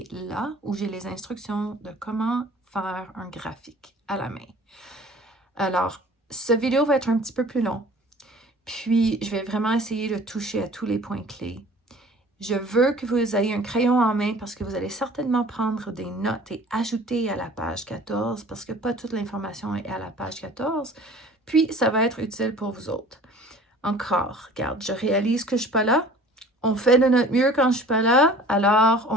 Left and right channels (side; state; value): both; normal; correlation 0.47